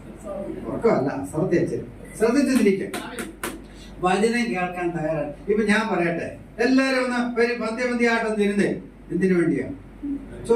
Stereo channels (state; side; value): identical; both; correlation 1.00